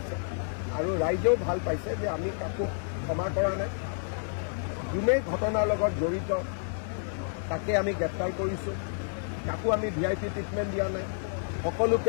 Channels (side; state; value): right; silent; digital silence